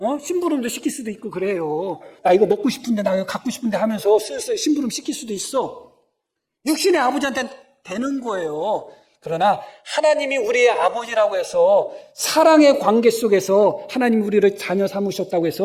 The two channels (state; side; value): identical; both; correlation 1.00